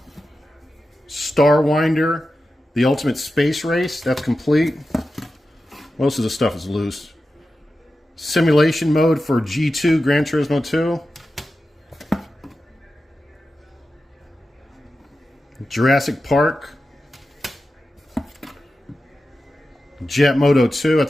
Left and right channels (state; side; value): normal; both; correlation 0.92